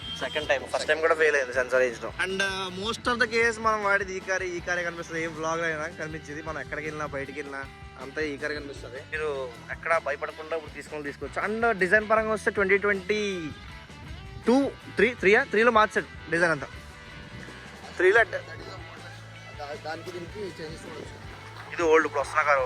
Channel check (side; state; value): both; identical; correlation 1.00